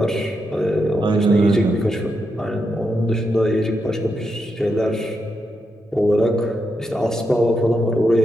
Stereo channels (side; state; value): both; normal; correlation 0.84